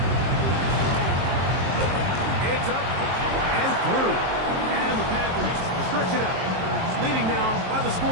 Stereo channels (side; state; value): left; late; 23 ms